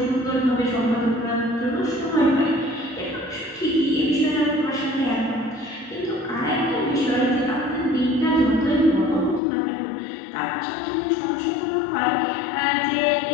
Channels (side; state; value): right; drops out; at 9.4 s